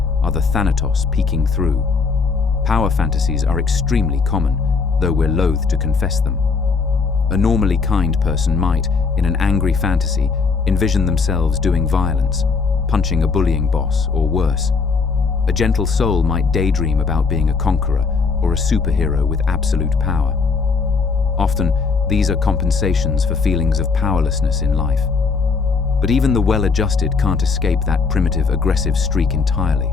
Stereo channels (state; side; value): quieter; right; 4.8 dB